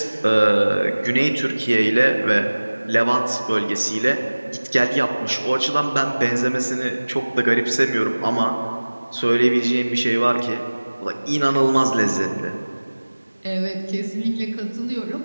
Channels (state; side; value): inverted; both; correlation -1.00